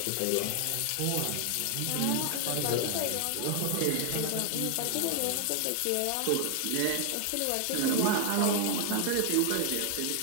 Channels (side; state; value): both; different; correlation 0.00